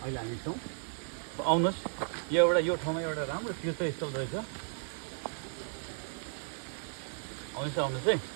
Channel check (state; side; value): silent; left; 55 dB below the other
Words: अहिले हामी छौँ। आउनुहोस्, यो ठाउँमा एउटा राम्रो तीर्थस्थल रहेछ। आउनुहोस् है।